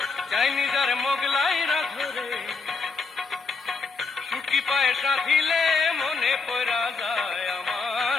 চাইনিজ আর মোগলাই রাধো রে। শুটকি পায়েস রাধিলে মনে পড়া যায় আমার,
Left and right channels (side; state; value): right; quieter; 4.5 dB